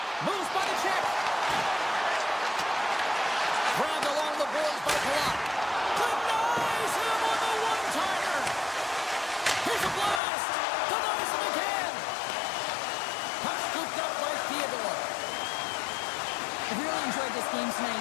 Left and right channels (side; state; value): right; drops out; at 10.2 s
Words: Moves by the check. Grabbed along the boards by Palat. Denies him on the one-timer. Here's a blast. Denies him again. Puck scooped up by Theodore. I've really enjoyed this game